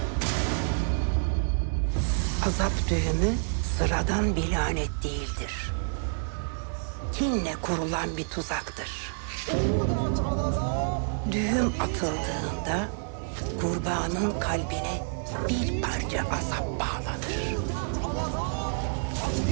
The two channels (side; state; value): left; silent; digital silence